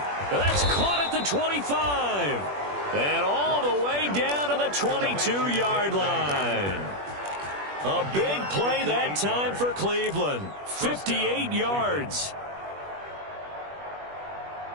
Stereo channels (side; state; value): left; late; 21 ms